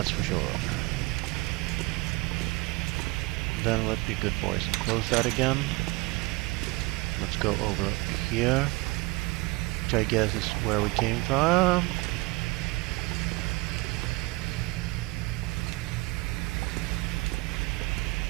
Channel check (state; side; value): quieter; left; 23.8 dB